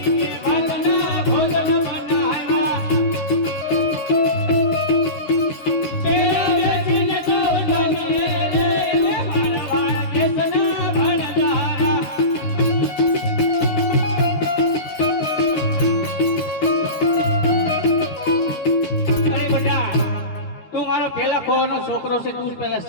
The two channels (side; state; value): right; late; 13 ms